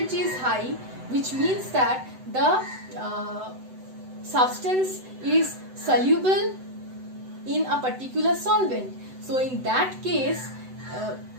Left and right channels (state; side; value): late; left; 7.9 ms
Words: is high, which means that the substance is soluble in a particular solvent. So in that case,